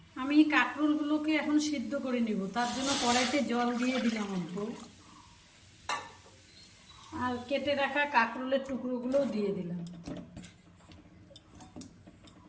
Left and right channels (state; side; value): identical; both; correlation 1.00